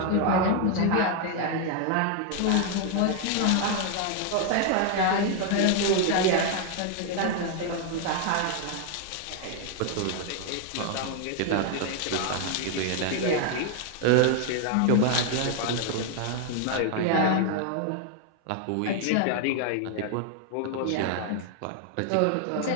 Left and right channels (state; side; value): different; both; correlation 0.00